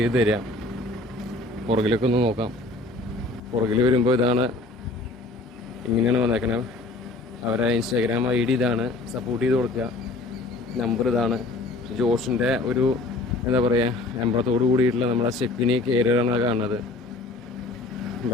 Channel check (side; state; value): right; quieter; 3.0 dB